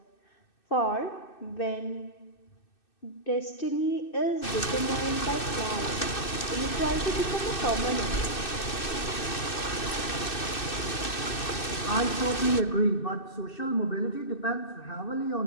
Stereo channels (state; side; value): late; right; 2.6 ms